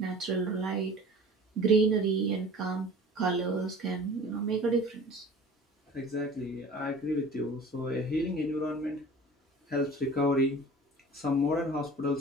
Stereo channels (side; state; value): both; normal; correlation 0.43